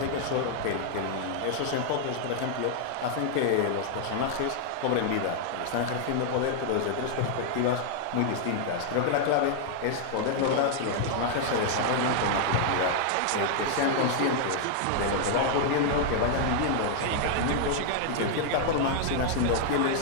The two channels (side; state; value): both; different; correlation 0.00